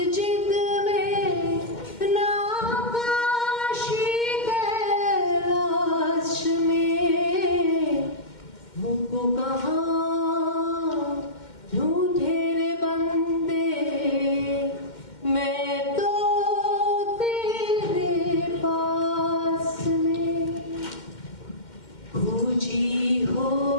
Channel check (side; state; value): right; late; 2.1 ms